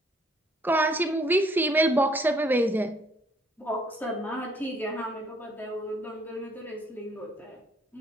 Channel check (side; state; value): both; normal; correlation 0.64